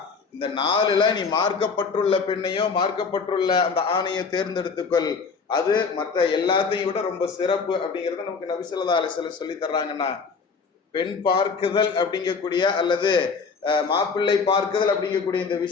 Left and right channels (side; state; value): right; quieter; 5.1 dB